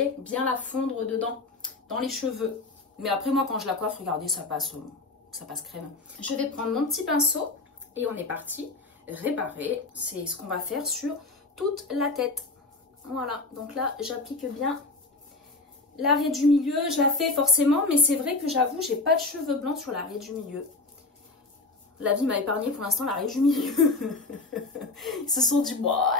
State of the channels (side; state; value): right; quieter; 3.4 dB